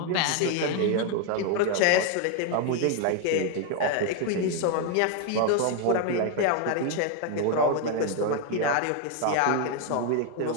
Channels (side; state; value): both; different; correlation 0.01